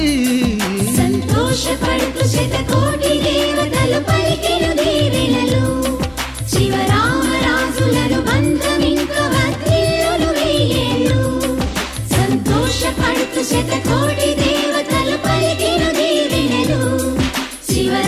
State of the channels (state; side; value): identical; both; correlation 1.00